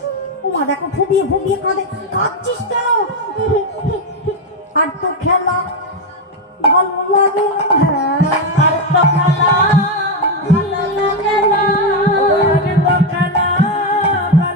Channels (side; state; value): both; normal; correlation 0.06